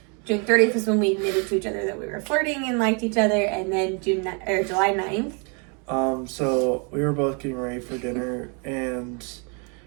June 30th was when we admitted to each other that we were flirting and liked each other, and then July 9th. So we were both getting ready for dinner, and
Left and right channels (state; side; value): quieter; left; 35.4 dB